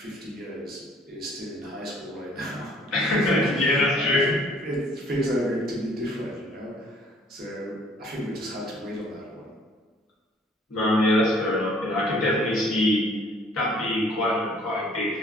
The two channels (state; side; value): normal; both; correlation 0.58